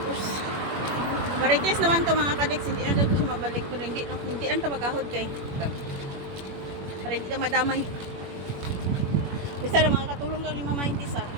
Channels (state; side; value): late; left; 21 ms